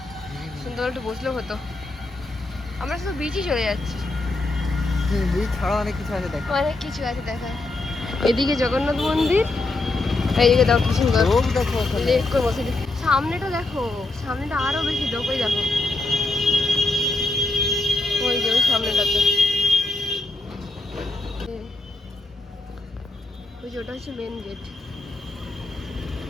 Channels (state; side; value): quieter; right; 3.1 dB